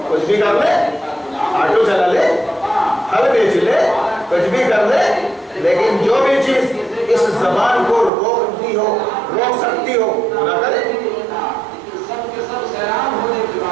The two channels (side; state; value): left; drops out; at 8.1 s